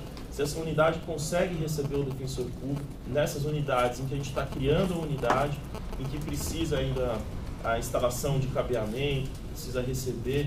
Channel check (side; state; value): both; identical; correlation 1.00